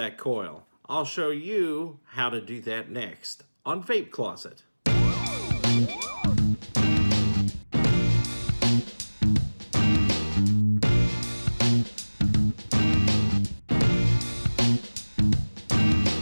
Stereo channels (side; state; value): both; inverted; correlation -1.00